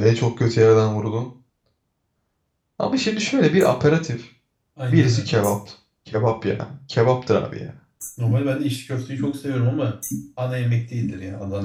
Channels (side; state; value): both; identical; correlation 1.00